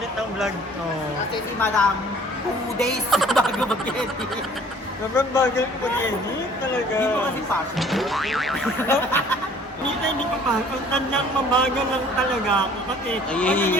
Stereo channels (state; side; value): normal; both; correlation 0.53